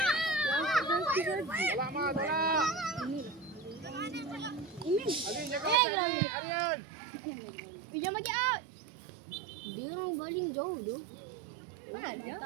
Arian jaga sini, Arian. Pinjam bagi out. Dia orang bowling jauh tu. Mana ada?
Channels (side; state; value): left; drops out; at 5.8 s